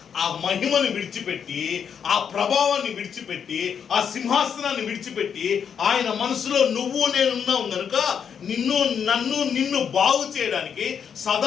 ఆ మహిమను విడిచిపెట్టి, ఆ ప్రభావాన్ని విడిచిపెట్టి, ఆ సింహాసనాన్ని విడిచిపెట్టి ఆయన మనసులో నువ్వు నేనున్నావు కనుక నిన్ను బాగు చేయడానికి,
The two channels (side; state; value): right; quieter; 7.5 dB